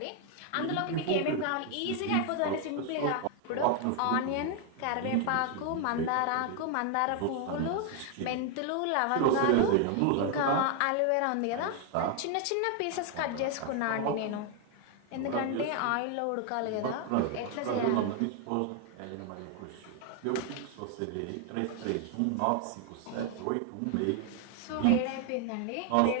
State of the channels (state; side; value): different; both; correlation 0.00